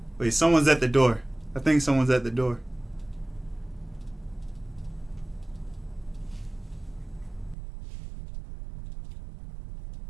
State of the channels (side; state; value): left; drops out; at 7.6 s